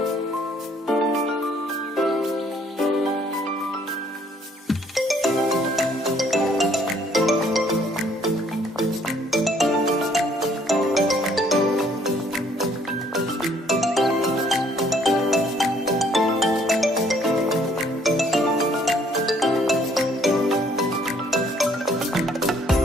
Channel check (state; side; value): normal; both; correlation 0.63